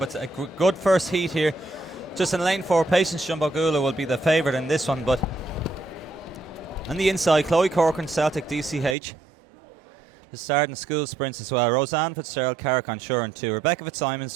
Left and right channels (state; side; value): drops out; left; at 9.0 s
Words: a good first heat here. Just in lane 4, Patience Jumbo Gula will be the favourite in this one, but on the inside, Chloe Corcoran, Celtic DCH. The starting school sprints as well. Roseanne Fitzgerald, Carrick Sure in 2. Rebecca